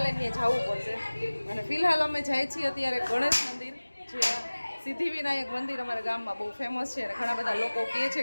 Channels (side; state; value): both; inverted; correlation -1.00